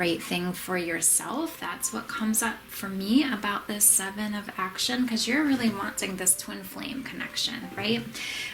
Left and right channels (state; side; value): identical; both; correlation 1.00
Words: thing for yourself, that's what comes up for me about this 7 of action, because you're really wanting this twin flame connection, right?